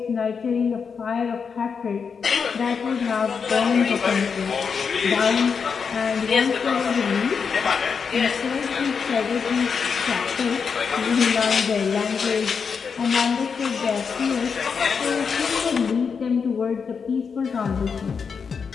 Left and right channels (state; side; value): quieter; right; 5.9 dB